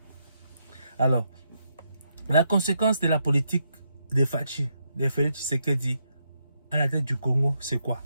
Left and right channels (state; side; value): inverted; both; correlation -0.79